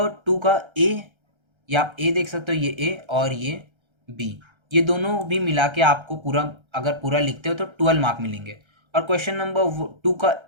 2 का A, या आप A देख सकते हो, ये A और ये B, ये दोनों भी मिला के आपको पूरा, अगर पूरा लिखते हो तो 12 मार्क मिलेंगे। और क्वेश्चन नंबर 2 का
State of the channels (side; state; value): left; late; 1.3 ms